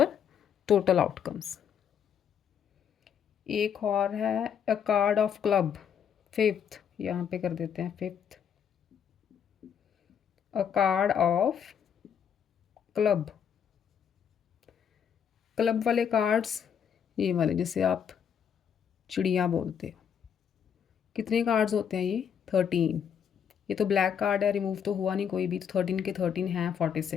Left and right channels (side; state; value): right; quieter; 8.0 dB